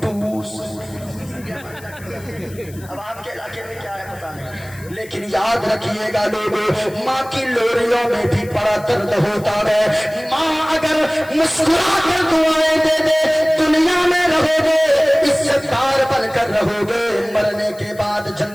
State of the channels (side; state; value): left; noise; hiss, 22 dB below the sound